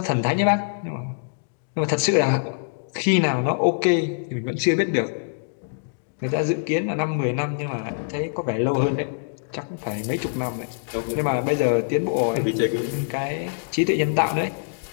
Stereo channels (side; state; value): right; silent; digital silence